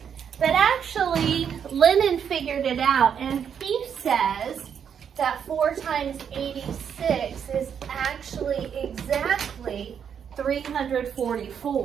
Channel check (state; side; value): quieter; left; 7.8 dB